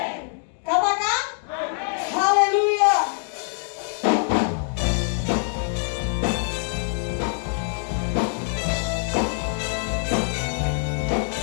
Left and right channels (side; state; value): right; silent; 56 dB below the other